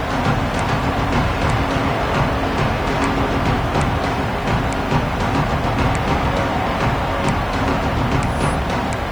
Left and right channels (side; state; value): left; noise; hiss, 27 dB below the sound